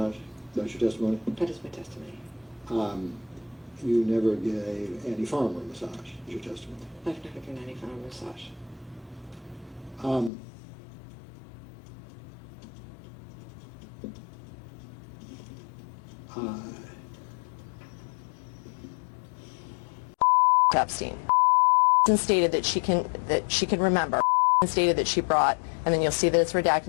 That's your testimony? That is my testimony. You never gave Andy Farmer a massage. Is your testimony? I've never given Andy Farmer a massage. Epstein stated that she can remember, and stated that she brought, and then you'll see that it's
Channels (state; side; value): drops out; right; at 10.3 s